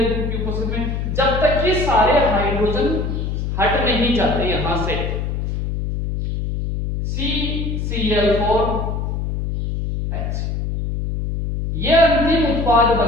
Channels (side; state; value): left; noise; hum, 2 dB below the sound